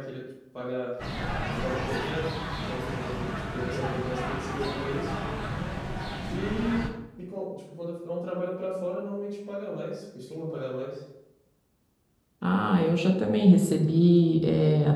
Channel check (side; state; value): both; identical; correlation 1.00